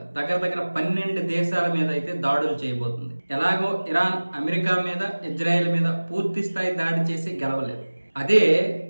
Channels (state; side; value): inverted; both; correlation -1.00